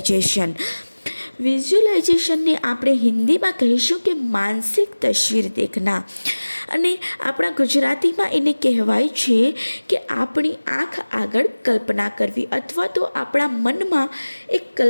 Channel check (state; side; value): inverted; both; correlation -1.00